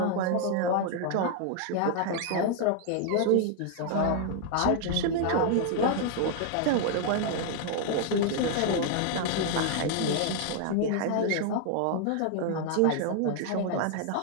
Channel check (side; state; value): both; different; correlation 0.00